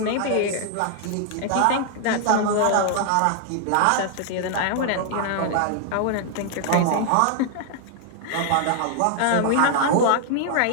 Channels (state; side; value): different; both; correlation 0.00